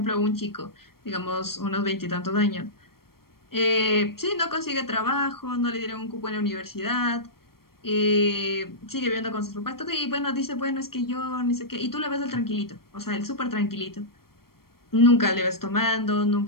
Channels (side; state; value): right; late; 0.94 ms